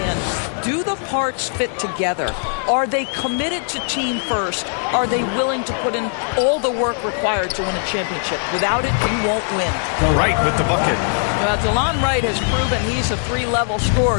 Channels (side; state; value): right; silent; 66 dB below the other